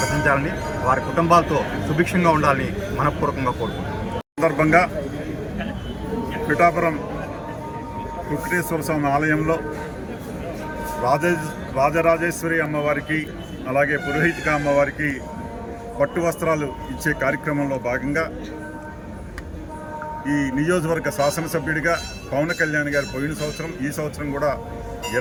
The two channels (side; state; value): both; identical; correlation 1.00